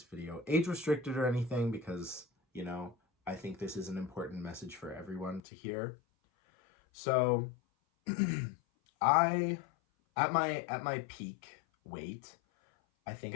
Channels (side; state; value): right; drops out; at 5.4 s